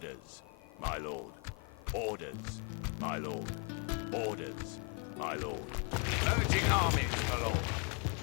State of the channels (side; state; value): right; quieter; 34.5 dB